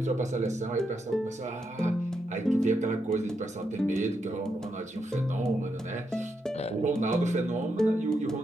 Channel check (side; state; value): both; normal; correlation 0.82